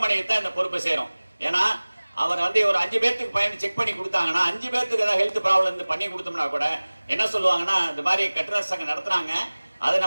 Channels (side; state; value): both; inverted; correlation -1.00